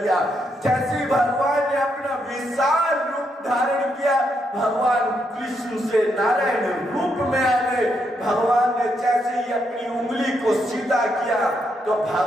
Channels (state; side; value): normal; both; correlation 0.79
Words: जैसे ही भगवान ने अपना विशाल रूप धारण किया, भगवान कृष्ण से नारायण रूप में आ गए। भगवान ने जैसे ही अपनी उंगली को सीधा किया, तो